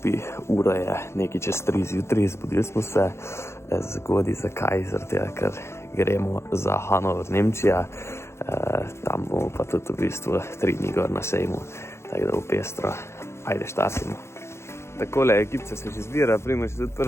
Ura je nekaj čez 3 zjutraj, zbudili smo se zgodaj. Zakaj? Zaradi tega, ker gremo za Hanover, Nemčija. Tam bomo pa tudi v bistvu 3 dni gor na sejmu, tako da bo pestro. Ajde, štartimo. Takole, ekipce se že zbira, Primož je tudi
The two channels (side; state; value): right; late; 0.13 ms